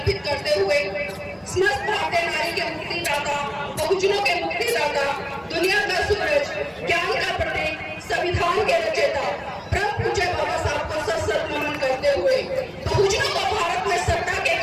करते हुए समस्त भारतीय नारी के मुक्तिदाता, बहुजनों के मुक्तिदाता, दुनिया का सूरज, ज्ञान का प्रतीक, संविधान के रचयिता परम पूज्य बाबा साहब को सशक्त नमन करते हुए बहुजनों को भारत में सत्ता के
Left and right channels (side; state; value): both; identical; correlation 1.00